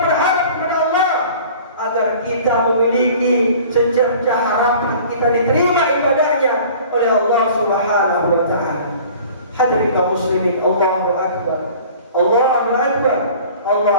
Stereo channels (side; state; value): both; inverted; correlation -0.46